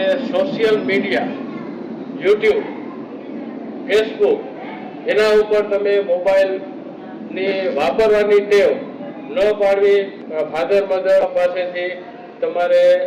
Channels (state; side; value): identical; both; correlation 1.00